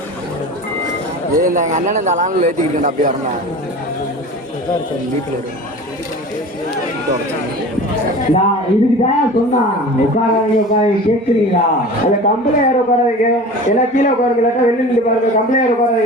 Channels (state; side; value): normal; both; correlation 0.37